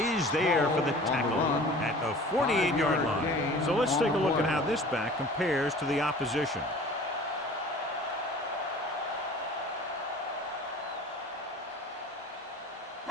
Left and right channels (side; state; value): both; normal; correlation 0.44